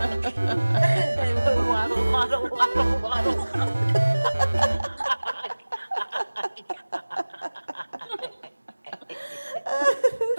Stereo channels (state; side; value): inverted; both; correlation -1.00